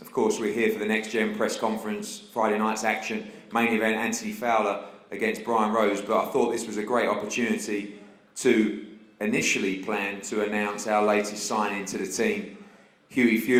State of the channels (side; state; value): both; identical; correlation 1.00